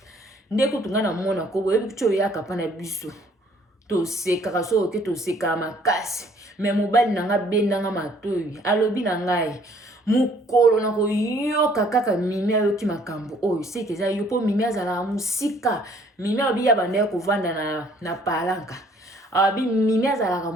ndeko tungana mona ko boye bicho yaka pana biso to seka so ke to seka makasi mais mobali nanga bendanga matoyi alobi na ngai mukolo na ko yoka kaka mimi ayoki makambo oyo sekeza yo po mimi azala musika mimi obi ya bande ko vanda na palanka abi mimi azala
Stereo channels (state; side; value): normal; both; correlation 0.60